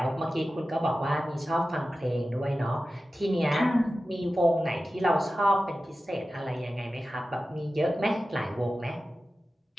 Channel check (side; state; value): both; normal; correlation 0.94